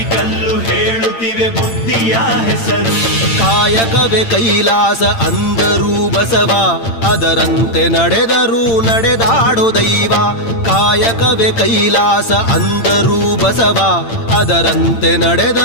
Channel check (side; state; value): right; late; 8.8 ms